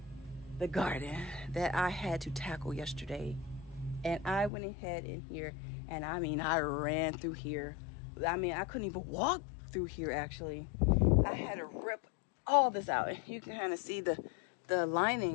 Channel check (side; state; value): right; drops out; at 4.5 s